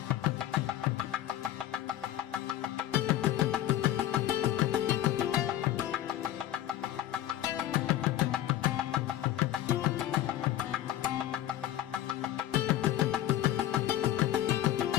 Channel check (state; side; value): quieter; right; 12.6 dB